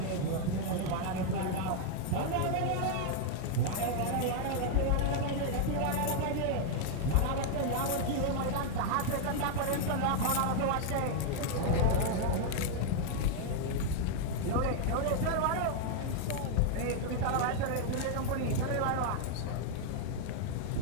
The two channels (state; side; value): different; both; correlation 0.00